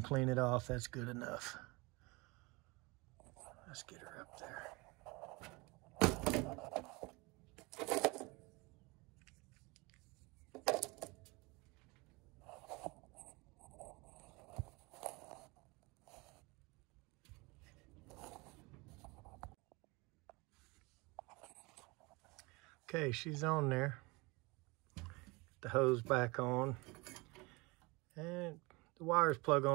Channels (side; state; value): left; quieter; 25.7 dB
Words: to clean it off. That's good enough. Let's get her up there. Okay, she's on there. Get the hose back on. And the wires plug